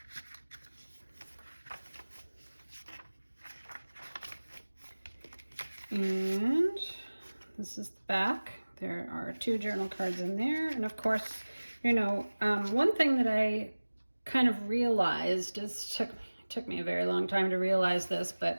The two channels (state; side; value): inverted; both; correlation -1.00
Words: And this is the back. There are 2 journal cards in there. And of course, you know, one thing that I kind of realized, took me a very long time to realize this,